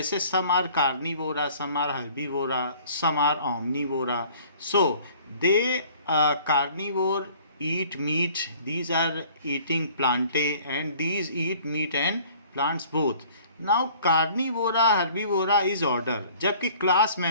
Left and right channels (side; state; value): both; inverted; correlation -0.52